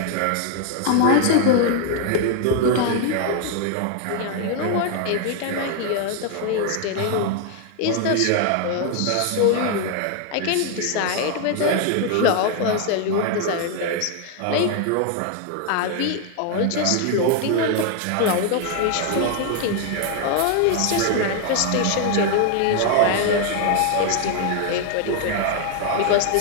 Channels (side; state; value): both; different; correlation 0.00